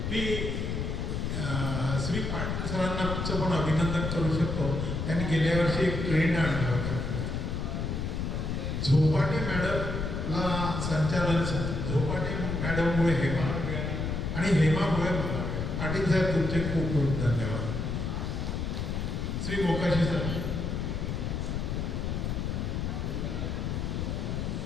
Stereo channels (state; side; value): noise; left; rumble, 2 dB below the sound